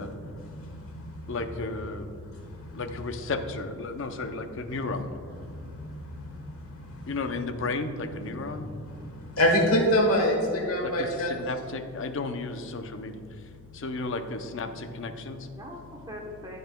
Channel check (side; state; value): left; noise; hum, 20 dB below the sound